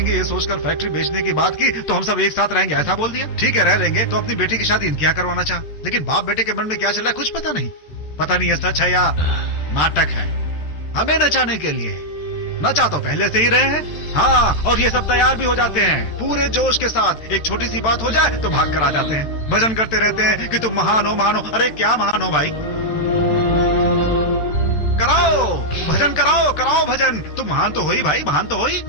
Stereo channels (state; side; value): late; right; 13 ms